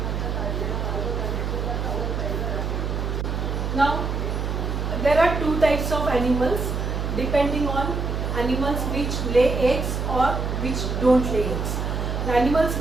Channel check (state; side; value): noise; right; hum, 1 dB below the sound